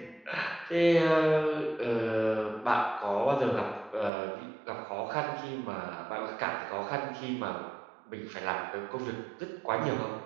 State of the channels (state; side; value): drops out; left; at 4.1 s